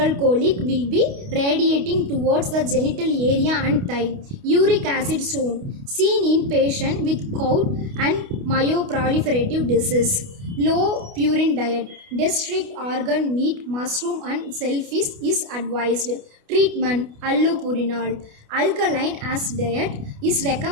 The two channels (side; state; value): left; late; 29 ms